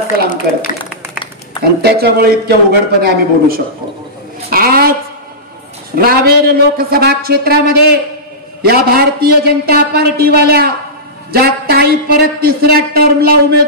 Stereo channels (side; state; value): both; normal; correlation -0.17